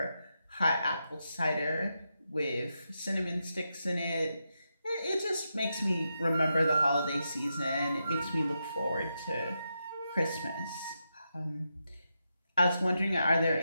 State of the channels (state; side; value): inverted; both; correlation -0.86